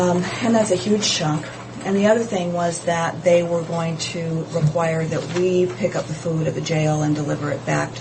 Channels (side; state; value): both; identical; correlation 1.00